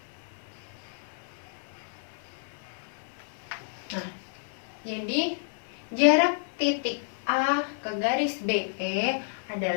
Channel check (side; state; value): right; silent; digital silence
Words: Nah, jadi jarak titik A ke garis BE